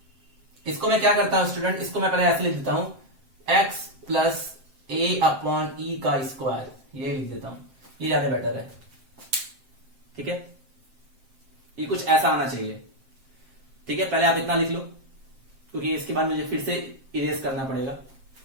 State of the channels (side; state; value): left; late; 7.6 ms